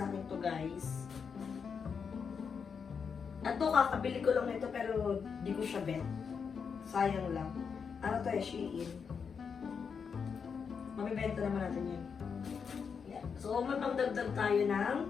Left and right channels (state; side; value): quieter; right; 6.2 dB